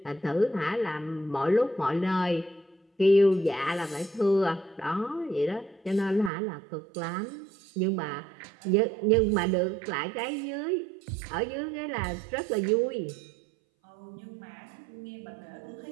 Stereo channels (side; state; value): left; drops out; at 6.3 s